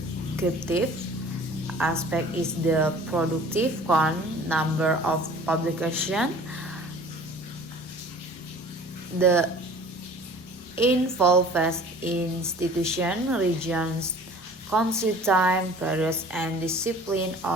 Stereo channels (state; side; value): normal; both; correlation 0.47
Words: aspect is the productive count, number of publications, the involved institution, regions, country, time, periods, and discipline